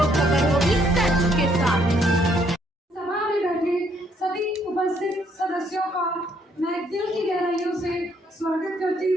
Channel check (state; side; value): normal; both; correlation 0.69